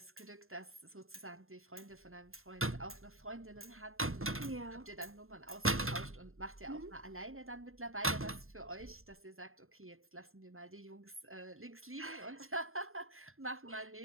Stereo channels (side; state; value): left; late; 0.61 ms